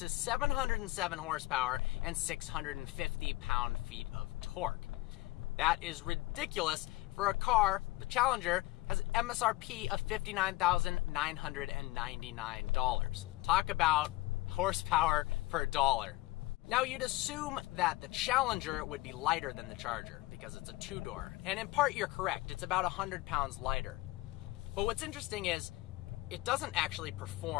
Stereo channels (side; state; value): right; quieter; 19.1 dB